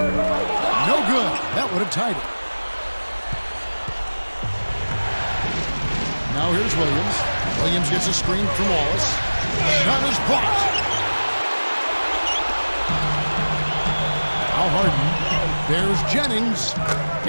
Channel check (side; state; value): both; inverted; correlation -1.00